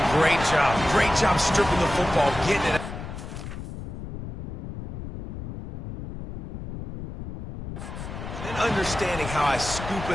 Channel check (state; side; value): noise; left; rumble, 8 dB below the sound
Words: great job. Great job stripping the football, getting it out. Understanding how I scoop